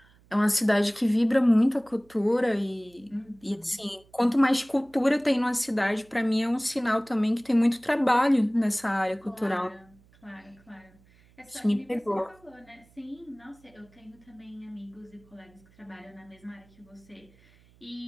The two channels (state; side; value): noise; right; hum, 29 dB below the sound